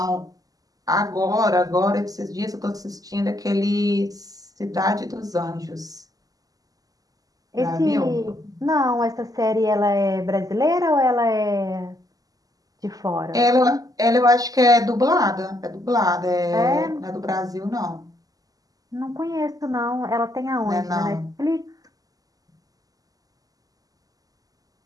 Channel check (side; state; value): left; late; 0.17 ms